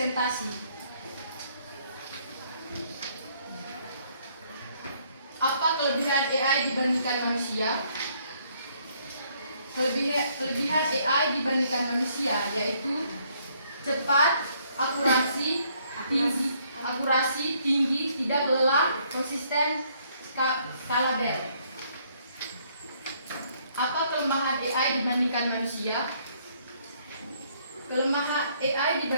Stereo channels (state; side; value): inverted; both; correlation -0.67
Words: Apa kelebihan AI dibandingkan manusia? Kelebihan AI dibandingkan manusia yaitu cepat, akurasi tinggi, tidak lelah, konsisten, skalabel. Apa kelemahan AI dibandingkan manusia? Kelemahan AI